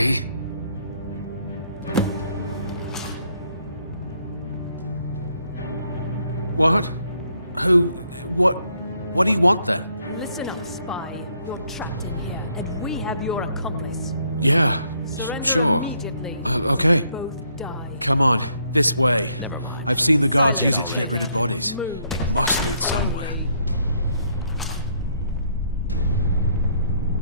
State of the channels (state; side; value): inverted; both; correlation -0.70